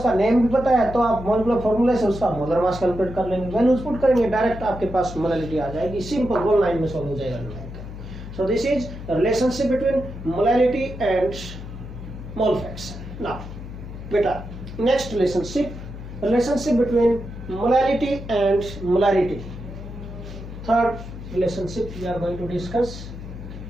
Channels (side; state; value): left; noise; hum, 11 dB below the sound